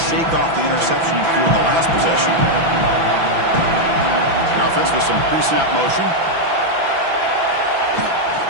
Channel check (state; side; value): late; left; 6.0 ms